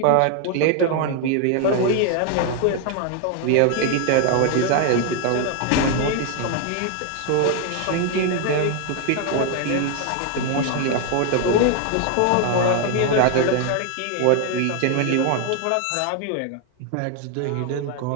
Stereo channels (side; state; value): both; different; correlation 0.01